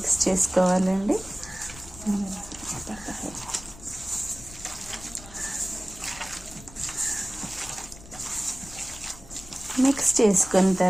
చేసుకోవాలండి. మిక్స్ చేసుకున్న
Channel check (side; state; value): left; noise; rumble, 18 dB below the sound